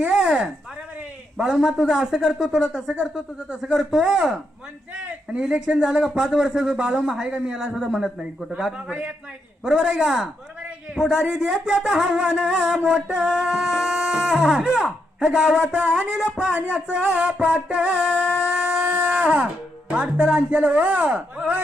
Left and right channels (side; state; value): both; normal; correlation 0.80